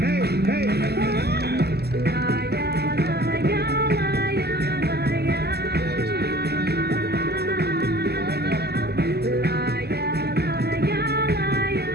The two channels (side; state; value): left; late; 0.47 ms